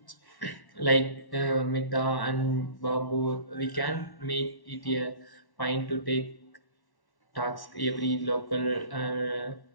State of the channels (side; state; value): right; late; 1.1 ms